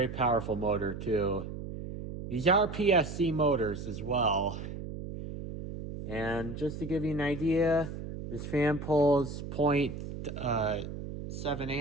powerful motor too. These are PSC motors as well. And just to give you an idea, this fan pulls 0.7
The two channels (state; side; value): noise; right; hum, 8 dB below the sound